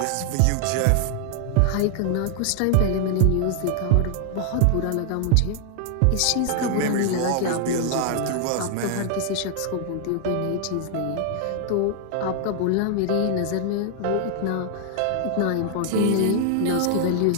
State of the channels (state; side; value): different; both; correlation 0.00